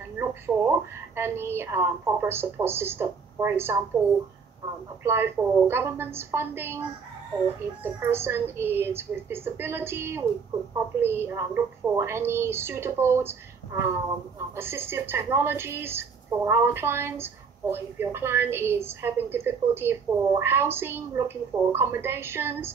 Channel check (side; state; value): left; quieter; 5.6 dB